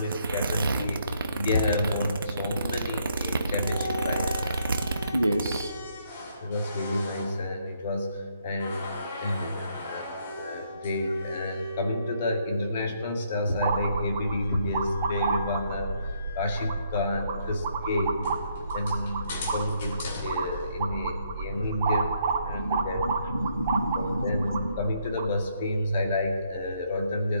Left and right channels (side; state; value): both; inverted; correlation -0.71